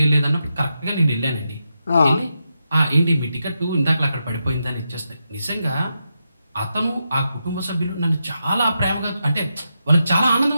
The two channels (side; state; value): both; inverted; correlation -0.86